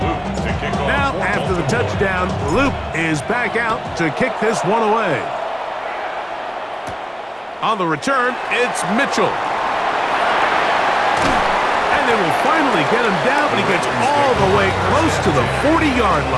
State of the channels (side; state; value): both; identical; correlation 1.00